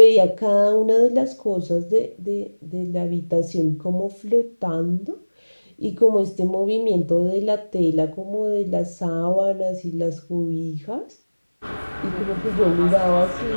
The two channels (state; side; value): inverted; both; correlation -1.00